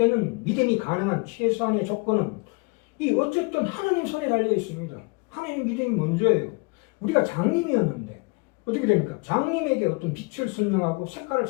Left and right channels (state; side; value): quieter; right; 29.2 dB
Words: 믿음이 가능한 최소한의 조건은 이 어쨌든 하나님 손에 달려 있습니다. 하나님 믿음이 먼저예요. 우리가 장님이었는데 어떻게 됩니까? 장님에게 어떤 빛을 설명하고 색깔을